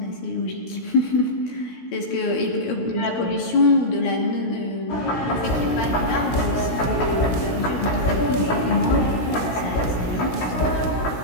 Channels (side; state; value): right; late; 16 ms